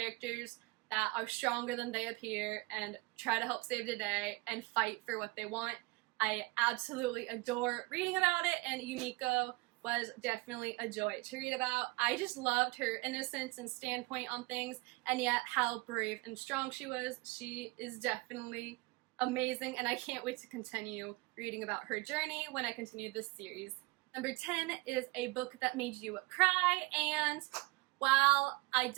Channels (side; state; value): left; quieter; 24.6 dB